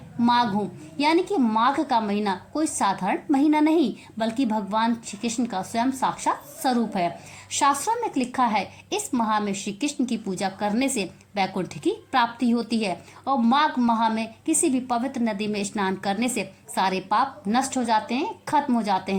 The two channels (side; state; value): both; identical; correlation 1.00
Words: माघ हूँ। यानी कि माघ का महीना कोई साधारण महीना नहीं बल्कि भगवान श्री कृष्ण का स्वयं साक्षात स्वरूप है। शास्त्रों में लिखा है इस माह में श्री कृष्ण की पूजा करने से वैकुंठ की प्राप्ति होती है और माघ माह में किसी भी पवित्र नदी में स्नान करने से सारे पाप नष्ट हो जाते हैं, खत्म हो जाते